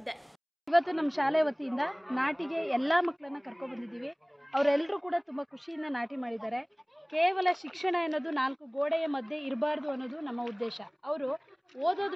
ಇವತ್ತು ನಮ್ಮ ಶಾಲೆ ವತಿಯಿಂದ ನಾಟಿಗೆ ಎಲ್ಲ ಮಕ್ಕಳನ್ನ ಕರ್ಕೊಂಡು ಬಂದಿದ್ದೀವಿ. ಅವರೆಲ್ಲರೂ ಕೂಡ ತುಂಬ ಖುಷಿಯಿಂದ ನಾಟಿ ಮಾಡಿದ್ದಾರೆ. ಕೇವಲ ಶಿಕ್ಷಣ ಅನ್ನೋದು 4 ಗೋಡೆಯ ಮಧ್ಯೆ ಇರಬಾರ್ದು ಅನ್ನೋದು ನಮ್ಮ ಉದ್ದೇಶ. ಅವರು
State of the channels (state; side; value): identical; both; correlation 1.00